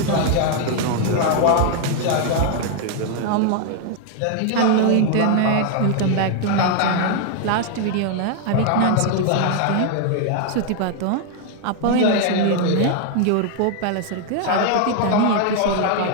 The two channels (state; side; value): different; both; correlation 0.00